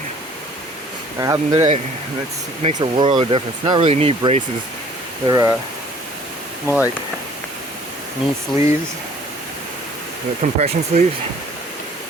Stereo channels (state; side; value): normal; both; correlation 0.54